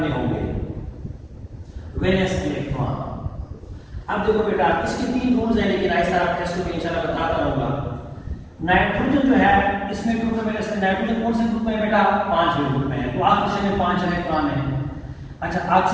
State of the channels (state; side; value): identical; both; correlation 1.00